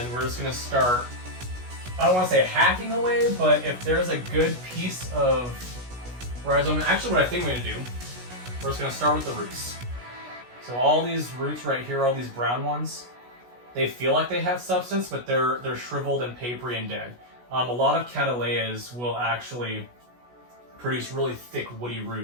we're just going to start, I don't want to say hacking away, but if there's a good piece of rhizome, actually what I think I'm going to do, we're just going to start with the roots. So all these roots right here, all these brown ones, they feel like they have substance, but they're shriveled and papery and dead. A lot of cattleyas will actually produce really thick woody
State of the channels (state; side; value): late; left; 16 ms